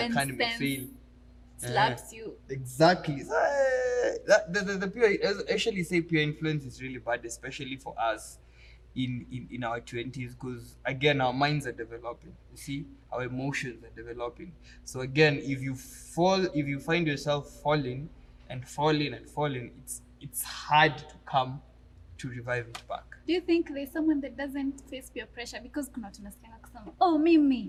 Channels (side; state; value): both; identical; correlation 1.00